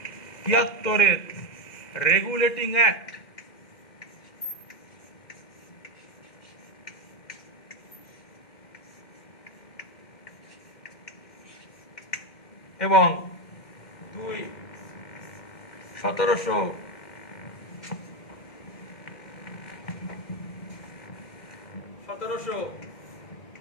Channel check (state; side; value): late; right; 2.1 ms